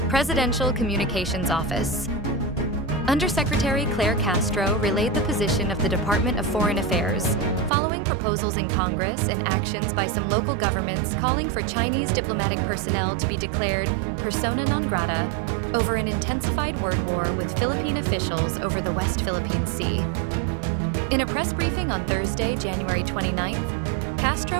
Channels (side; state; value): left; drops out; at 7.7 s